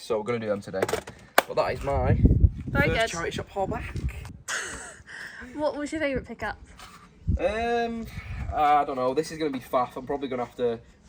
so we're going to do them today. But that is my first charity shop haul back. What was your favourite pickup? I don't know. This is going to be faff. I'm probably going to have to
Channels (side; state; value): both; identical; correlation 1.00